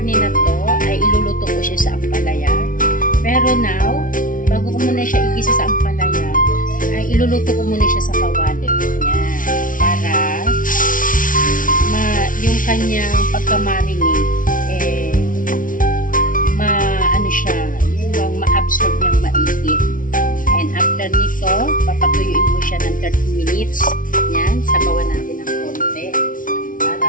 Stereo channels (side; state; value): right; late; 0.39 ms